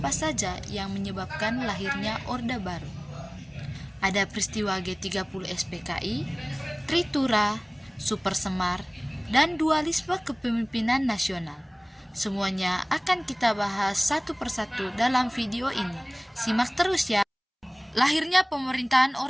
saja yang menyebabkan lahirnya Orde Baru? Ada peristiwa G30 SPKI, Tritura, Super Semar, dan dualisme kepemimpinan nasional. Semuanya akan kita bahas satu persatu dalam video ini. Simak terus ya. Lahirnya pemerintahan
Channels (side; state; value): both; identical; correlation 1.00